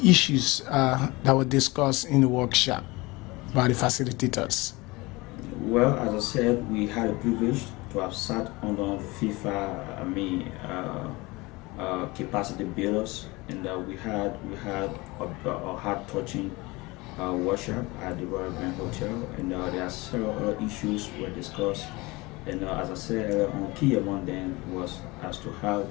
issues that were discussed in the workshop by the facilitators? Well, as I said, we had a privilege to have sat under FIFA, capacity builders, and we had a heart-touching workshop at the Royal Grand Hotel, and there are several other issues were discussed. And as I said, key among them was as to how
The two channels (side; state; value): right; quieter; 23.1 dB